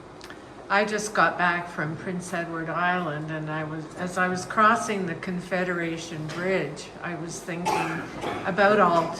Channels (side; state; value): both; identical; correlation 1.00